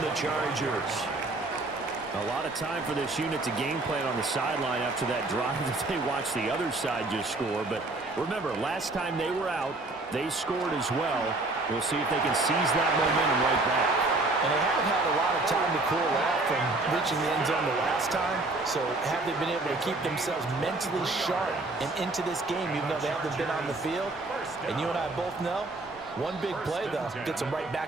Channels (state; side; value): quieter; left; 3.0 dB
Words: Chargers. A lot of time for this unit to game plan on the sideline after that drive that they watched the other side just score. But remember, last time they were out, they scored as well. We'll see if they can seize that momentum right back. And they have had a lot of time to cool off from reaching the end zone the last time. So have they been able to keep themselves mentally sharp and into this game, even though they haven't been on the field? And you and I both know, one big play, though, gets them right